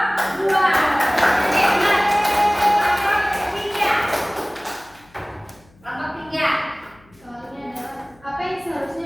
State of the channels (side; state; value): left; noise; hum, 29 dB below the sound